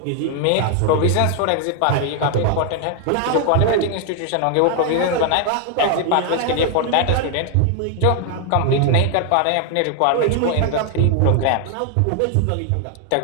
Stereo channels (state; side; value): different; both; correlation 0.00